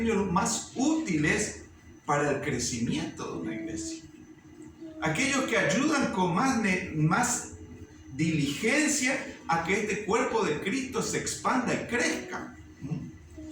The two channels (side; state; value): both; identical; correlation 1.00